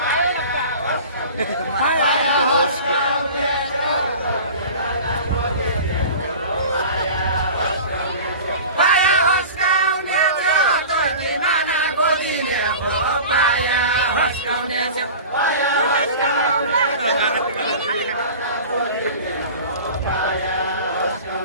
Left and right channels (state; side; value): inverted; both; correlation -0.38